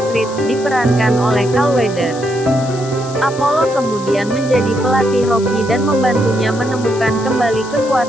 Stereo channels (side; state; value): left; noise; hiss, 16 dB below the sound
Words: Creed, diperankan oleh Carl Weathers. Apollo kemudian menjadi pelatih Rocky dan membantunya menemukan kembali